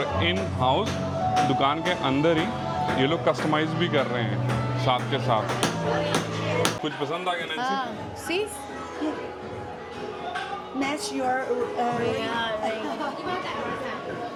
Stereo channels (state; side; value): identical; both; correlation 1.00